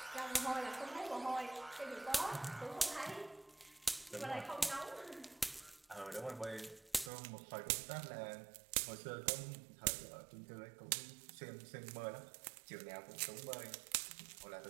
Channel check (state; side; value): drops out; left; at 7.1 s